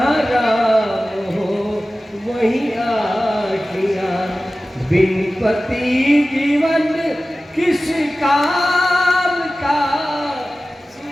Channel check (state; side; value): normal; both; correlation 0.96